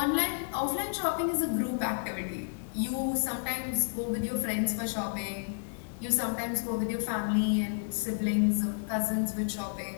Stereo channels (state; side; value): silent; right; digital silence